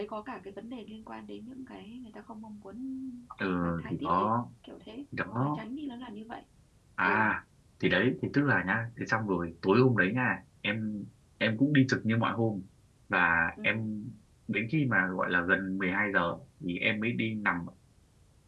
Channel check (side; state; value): both; identical; correlation 1.00